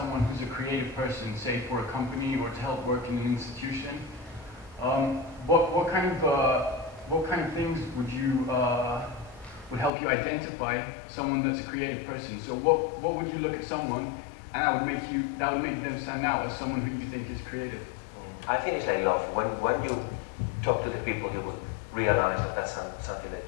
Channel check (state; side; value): drops out; right; at 9.9 s